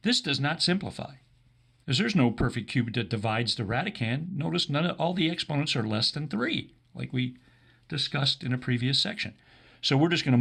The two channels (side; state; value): both; identical; correlation 1.00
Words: This does not simplify, as there's no perfect cube that divides the radicand. Notice all the exponents are less than 3, like we discussed in a previous section. So we're just going to